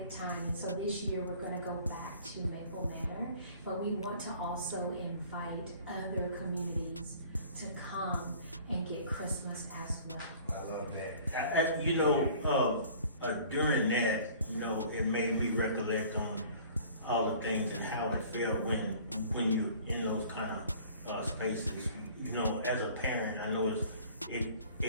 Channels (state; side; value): inverted; both; correlation -0.49